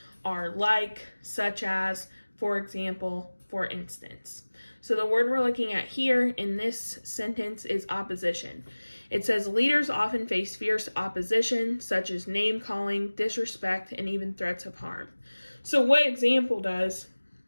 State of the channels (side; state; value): both; inverted; correlation -1.00